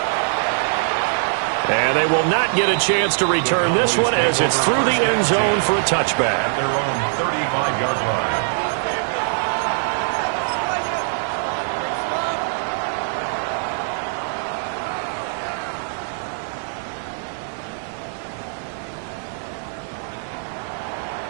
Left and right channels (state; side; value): silent; left; 57 dB below the other